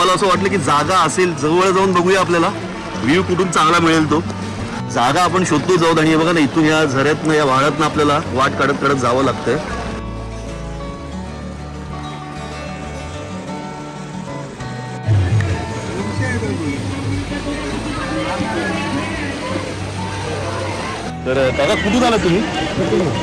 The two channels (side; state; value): both; identical; correlation 1.00